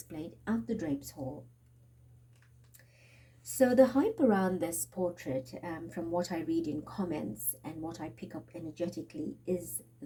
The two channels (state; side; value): identical; both; correlation 1.00